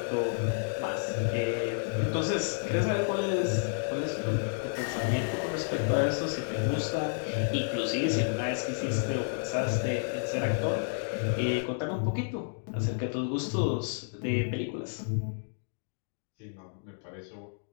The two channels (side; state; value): right; silent; digital silence